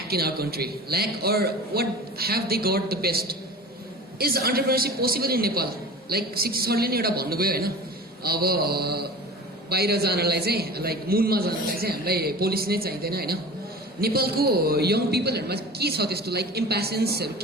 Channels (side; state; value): both; normal; correlation 0.37